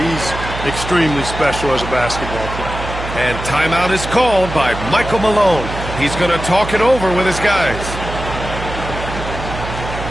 extremely special as a basketball player. And timeout is called by Michael Malone. He's going to talk it over with his guys.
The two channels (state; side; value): noise; right; hum, 8 dB below the sound